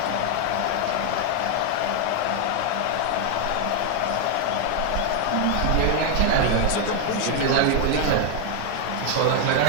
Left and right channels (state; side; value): different; both; correlation 0.00